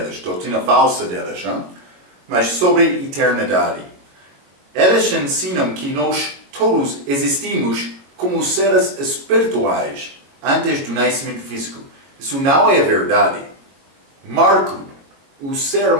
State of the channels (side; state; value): left; late; 22 ms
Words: doutrina falsa deles, hein? Mas sobre eternidade. Eles ensinam que nós todos existimos como seres espirituais antes do nascimento físico. Isso não é verdade. Marco, o ser